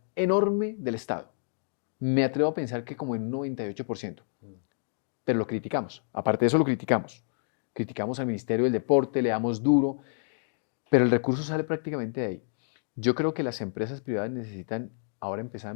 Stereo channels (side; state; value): right; silent; digital silence